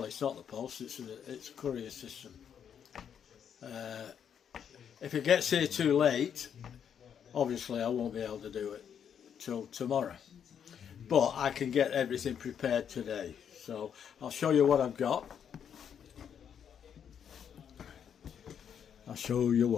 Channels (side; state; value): right; quieter; 8.2 dB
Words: it's not the post, it's a courier system. If it gets here too late, obviously I won't be able to do it till tomorrow, but I can get everything prepared today. So I'll show you what I've got. I'll show you